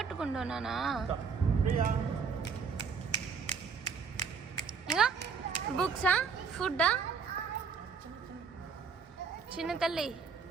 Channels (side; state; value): left; quieter; 5.8 dB